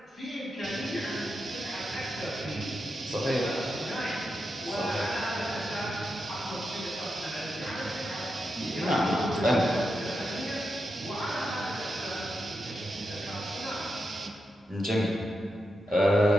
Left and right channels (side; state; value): both; normal; correlation 0.87